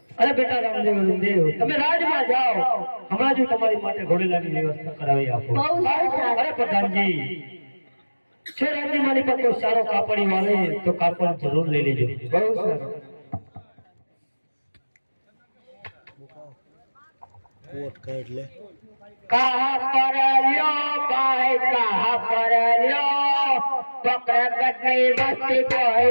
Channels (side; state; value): both; inverted; correlation -1.00